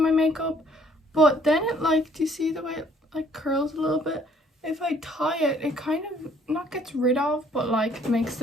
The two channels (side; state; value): both; normal; correlation 0.61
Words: makeup, but then it like, do you see the way it like curls a little bit? If I tie it, it kind of not gets rid of, but like makes